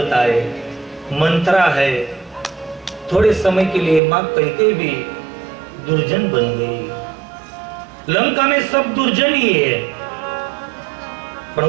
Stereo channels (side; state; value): left; drops out; at 4.0 s